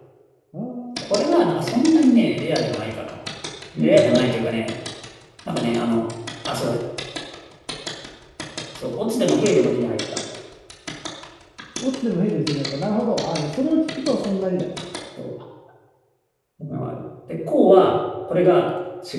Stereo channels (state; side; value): identical; both; correlation 1.00